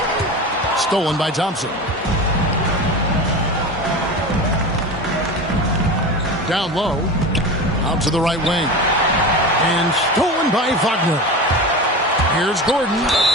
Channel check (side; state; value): both; normal; correlation 0.28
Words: Stolen by Thompson. Down low. Out to the right wing. And stolen by Wagner. Here's Gordon.